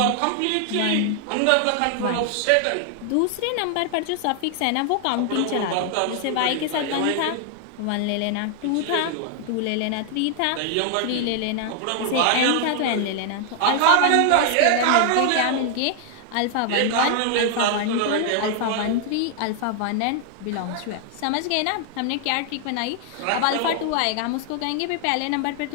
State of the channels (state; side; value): different; both; correlation 0.00